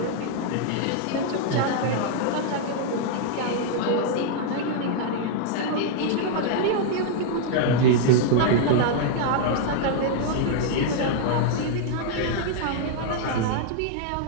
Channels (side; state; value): both; different; correlation 0.00